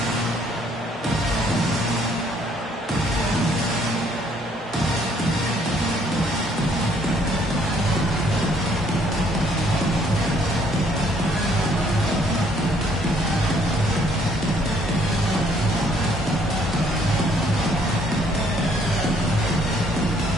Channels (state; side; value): normal; both; correlation 0.64